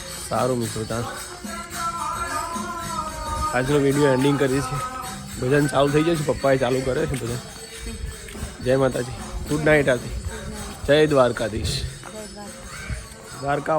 સારું મિત્રો તાર આજનો વિડીયો એન્ડિંગ કરીએ છીએ. ભજન ચાલુ થઈ જશે, પપ્પાએ ચાલુ કરે છે ભજન. જય માતાજી, ગુડ નાઇટ આથી. જય દ્વારકાધીશ.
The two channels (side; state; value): both; identical; correlation 1.00